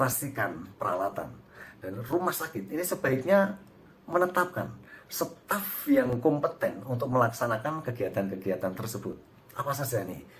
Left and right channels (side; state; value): both; identical; correlation 1.00